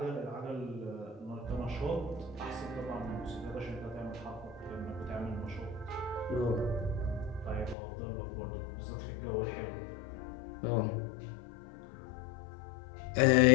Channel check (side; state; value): right; drops out; at 7.8 s